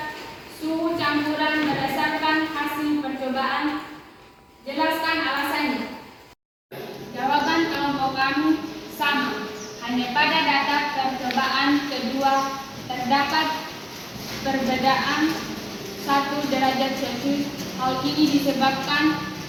terdapat perbedaan 1 derajat Celcius. Hal ini disebabkan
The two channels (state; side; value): identical; both; correlation 1.00